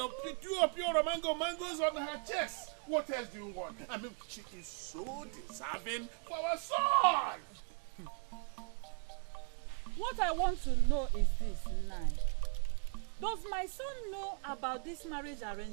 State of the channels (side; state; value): left; quieter; 39.3 dB